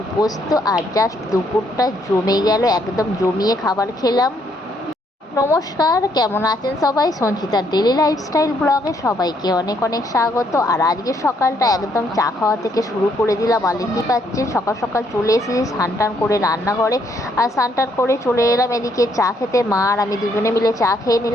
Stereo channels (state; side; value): normal; both; correlation 0.71